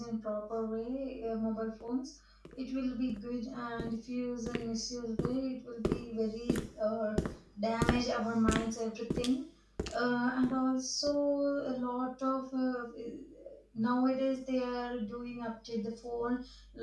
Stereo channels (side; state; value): both; identical; correlation 1.00